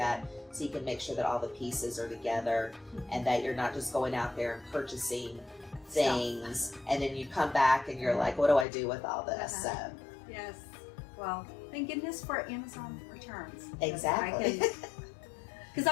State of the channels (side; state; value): right; drops out; at 8.7 s